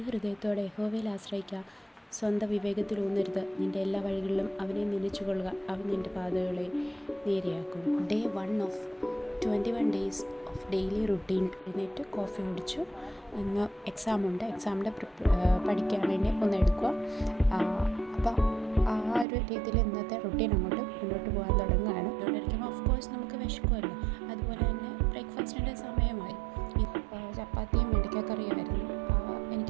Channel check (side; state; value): left; drops out; at 19.2 s